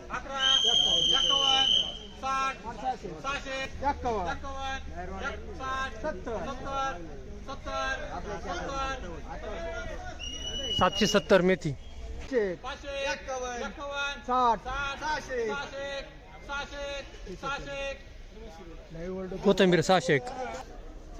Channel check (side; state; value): both; identical; correlation 1.00